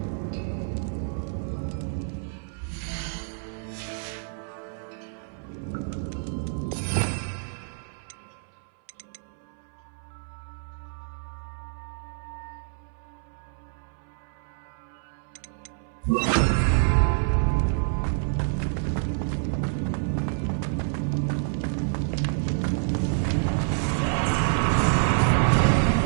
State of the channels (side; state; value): left; silent; 60 dB below the other